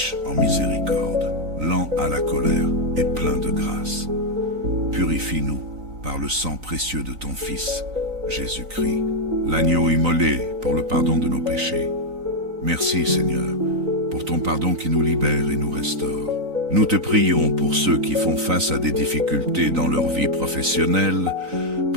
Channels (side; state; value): left; late; 3.9 ms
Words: en miséricorde, lent à la colère et plein de grâce. Purifie-nous par le sang précieux de ton Fils, Jésus-Christ, l'agneau immolé pour le pardon de nos péchés. Merci Seigneur, pour ton pardon qui nous libère et nous restaure. Nous te prions pour ceux qui font face à des difficultés dans leur vie professionnelle,